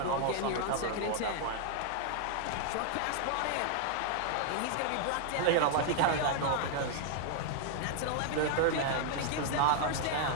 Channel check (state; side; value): different; both; correlation 0.00